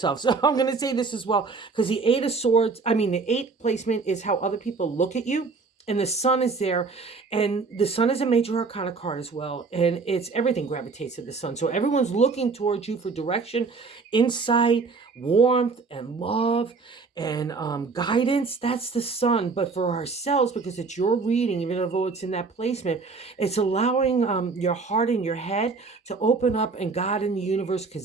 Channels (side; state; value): left; quieter; 4.4 dB